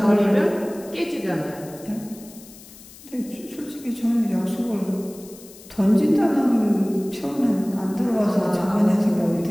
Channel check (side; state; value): left; noise; hiss, 20 dB below the sound